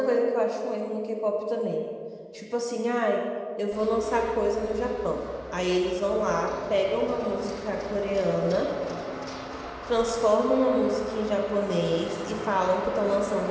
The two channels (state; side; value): identical; both; correlation 1.00